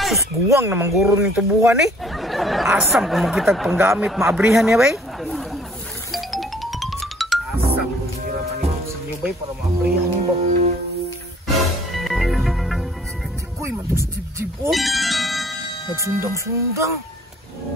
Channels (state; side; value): normal; both; correlation 0.58